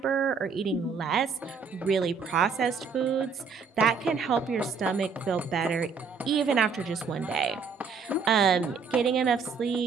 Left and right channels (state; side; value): quieter; left; 5.5 dB